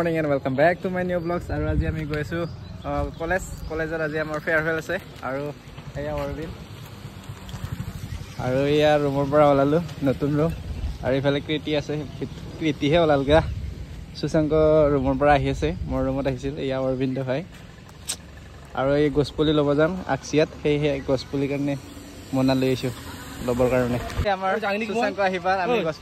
and welcome back to my new blogs আৰু আজি আমি গৈ আছোঁ কলেজত আজি আমাৰ ফেয়াৰৱেল আছে আৰু এয়া অৰবিন আৰু এয়া ৰুমৰ পৰা ওলালোঁ নতুন ৰুম আৰু এইফালে কৃতি আছে কৃতিহে ওলালগা সুশাংক ৰুমৰ পৰা আহি আছে মোৰ ৰুমত আহিছিল এয়া অৰবিন্দ ভাই আৰু এই গছপুলি ল'ব যাম আকচিয়াত সেয়েহে গছপুলিৰ কাৰণে মনা লৈ আহিছোঁ ল'বৰ কাৰণে আমাৰ সুশাংক আহিবা আমি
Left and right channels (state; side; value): identical; both; correlation 1.00